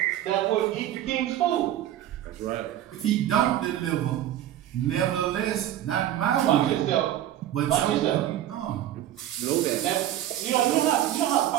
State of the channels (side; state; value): left; quieter; 12.3 dB